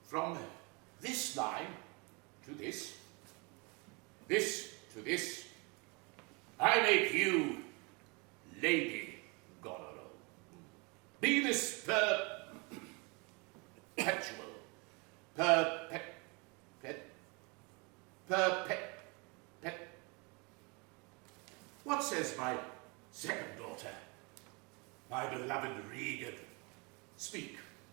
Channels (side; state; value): left; quieter; 30.1 dB